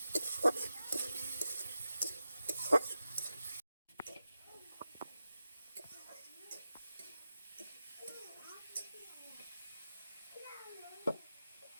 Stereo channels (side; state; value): both; inverted; correlation -0.92